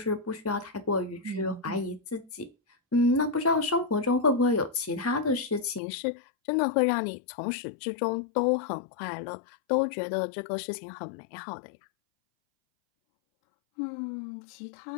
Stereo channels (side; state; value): right; drops out; at 5.8 s